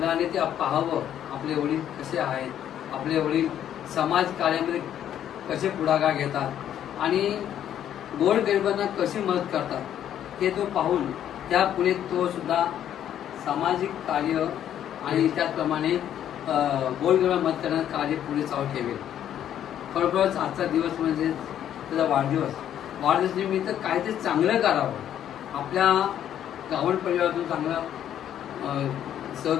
ते पाहावं आपले वडील कसे आहेत, आपले वडील समाज कार्यामध्ये कसे पुढाकार घेतात आणि गोरगरिबांना कशी मदत करतात हे तो पाहून त्या पुढे तो सुद्धा सामाजिक कार्य आणि त्याचप्रमाणे गोरगरिबांना मदत करण्याचं कार्य पुढे चालू ठेवेल. खरोखरच आजचा दिवस म्हणजे त्याचा वाढदिवस निमित्त काहीतरी चांगलं करावं, आपल्या गावण परिवारातून चांगलं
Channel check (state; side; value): quieter; right; 10.5 dB